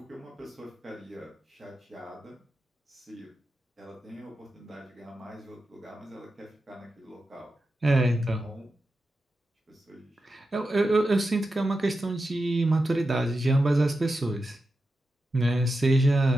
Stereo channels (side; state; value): both; normal; correlation 0.90